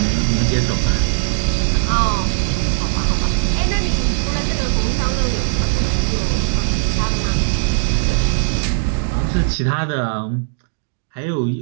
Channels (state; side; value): silent; left; 67 dB below the other